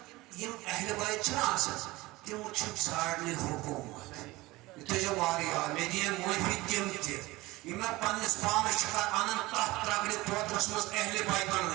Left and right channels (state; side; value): quieter; left; 20.2 dB